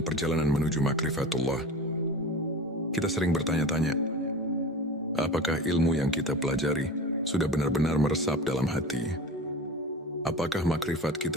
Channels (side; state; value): both; normal; correlation 0.33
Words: perjalanan menuju makrifatullah, kita sering bertanya-tanya, apakah ilmu yang kita pelajari sudah benar-benar meresap dalam hati? Apakah makrifat